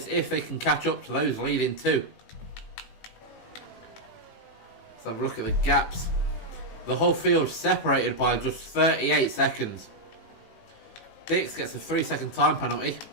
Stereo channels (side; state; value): right; late; 18 ms